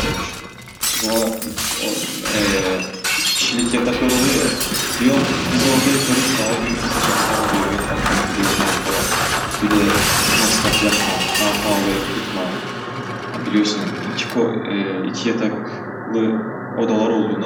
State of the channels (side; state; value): both; identical; correlation 1.00